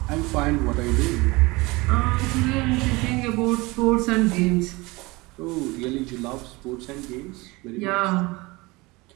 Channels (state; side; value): quieter; left; 23.4 dB